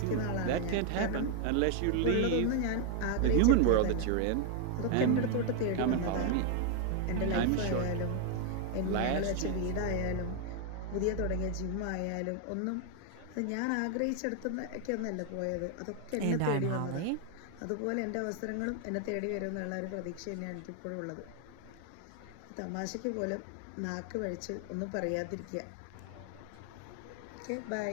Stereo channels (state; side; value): different; both; correlation 0.00